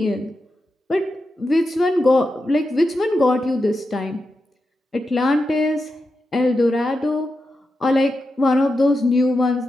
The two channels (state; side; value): normal; both; correlation 0.89